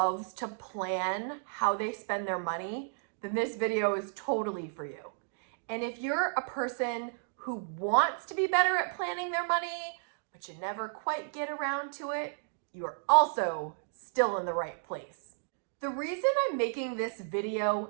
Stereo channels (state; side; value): silent; left; digital silence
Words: to plan how they spend their money, then this video is totally for you. And if you're a person who wants to be better at planning their money, but you never quite get around to it, you are also still in the right place. The reason I'm making this video